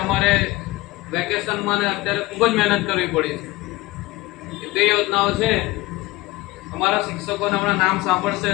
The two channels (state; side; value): quieter; right; 20.0 dB